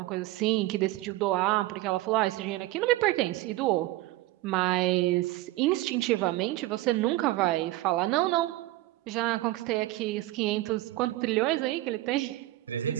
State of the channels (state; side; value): quieter; left; 17.1 dB